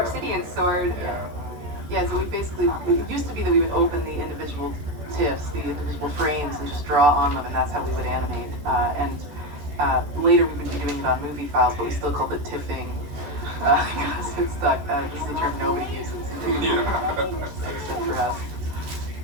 sword. Yeah, so it used to be that we would open the individual TIFFs, the individual frames, and just draw on them, and that's how we would animate. Later we would be doing it on movie files, but we still called it tiffing, because it stuck. This is a term nobody uses. Except for us.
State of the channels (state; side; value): late; left; 14 ms